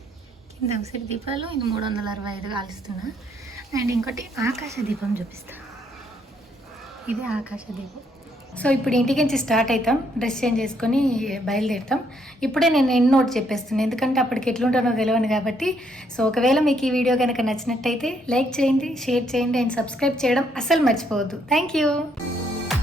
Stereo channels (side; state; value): both; normal; correlation 0.71